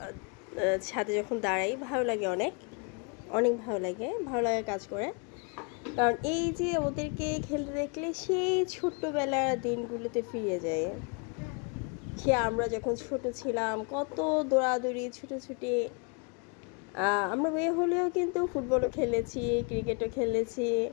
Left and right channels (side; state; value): right; quieter; 35.2 dB